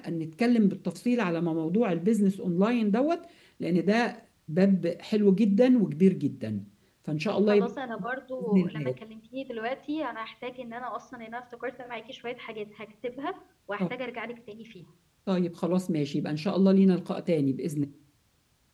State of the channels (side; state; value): both; identical; correlation 1.00